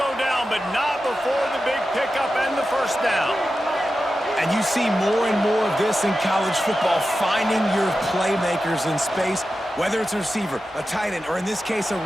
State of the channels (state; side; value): normal; both; correlation 0.92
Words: down, but not before the big pickup and the first down. And you see more and more of this in college football, finding your playmakers in space, whether it's a receiver, a tight end, or in this case, a